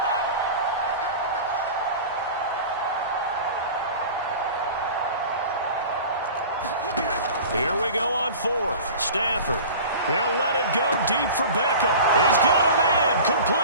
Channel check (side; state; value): both; inverted; correlation -0.38